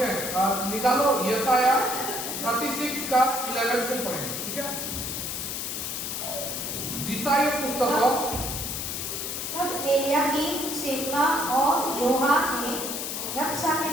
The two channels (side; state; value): left; noise; hiss, 4 dB below the sound